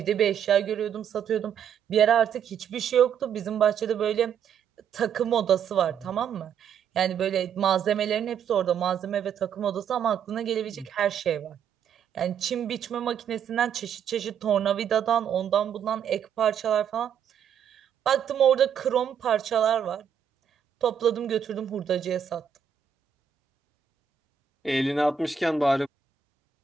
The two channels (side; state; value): left; quieter; 8.0 dB